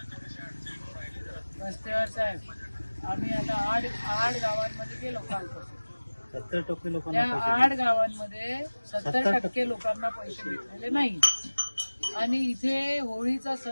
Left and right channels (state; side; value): inverted; both; correlation -1.00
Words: रस्त्यावर साहेब, आम्ही आता आठ गावांमध्ये गेलो कालपासून. 70% त्या लोकांना 8 गावांमध्ये 70% लोकांना पैसे भेटलेले नाही. आणि इथे होळीचा